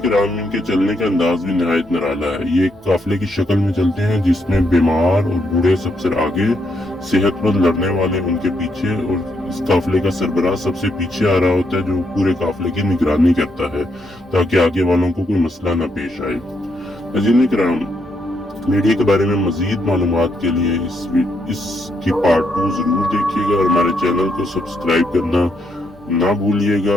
कराम, इनके चलने का अंदाज भी निहायत निराला है। ये एक काफिले की शक्ल में चलते हैं जिसमें बीमार और बूढ़े सबसे आगे, सेहतमंद लड़ने वाले उनके पीछे, और इस काफिले का सरबराह सबसे पीछे आ रहा होता है जो पूरे काफिले की निगरानी करता है ताकि आगे वालों को कोई मसला न पेश आए। नाज़रीन कराम, भेड़िए के बारे में मजीद मालूमात के लिए इसकी पार्ट 2 जरूर देखिएगा और हमारे चैनल को सब्सक्राइब करना ना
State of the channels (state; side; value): normal; both; correlation 0.78